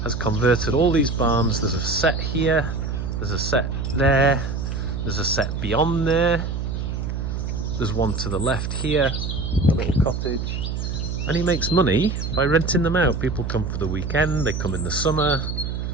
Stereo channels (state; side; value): noise; right; hum, 3 dB below the sound